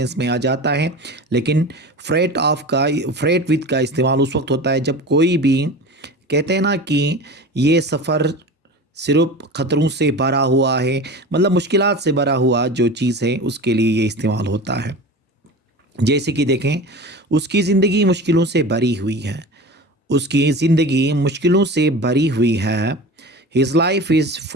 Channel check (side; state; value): both; normal; correlation 0.33